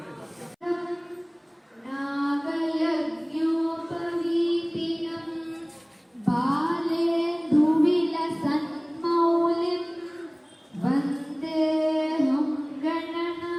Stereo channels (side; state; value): both; identical; correlation 1.00